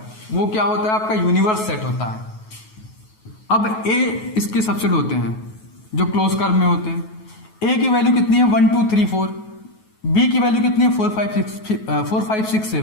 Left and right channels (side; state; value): right; late; 9.3 ms